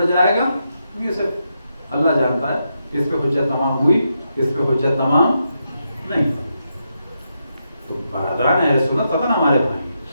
جائے گا، یہ صرف اللہ جانتا ہے کس پہ حجت تمام ہوئی، کس پہ حجت تمام نہیں. تو برادران اہل سنت پتہ نا ہمارے بھائی،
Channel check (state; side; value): inverted; both; correlation -0.83